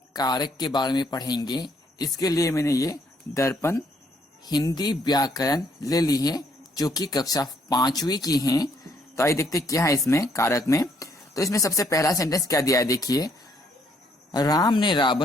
कारक के बारे में पढ़ेंगे। इसके लिए मैंने ये दर्पण हिंदी व्याकरण ले ली है जो कि कक्षा 5वीं की है। तो आइए देखते क्या है इसमें कारक में। तो इसमें सबसे पहला सेंटेंस क्या दिया है, देखिए, राम ने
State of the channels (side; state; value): both; normal; correlation 0.69